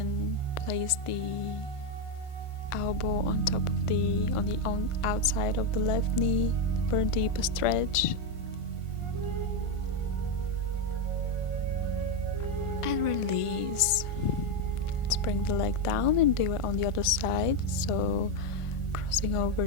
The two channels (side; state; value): right; late; 1.5 ms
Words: place the elbow on top of the outside of the left knee for a deeper stretch. And release. Let's bring the leg down and do it on the other side. So crossing over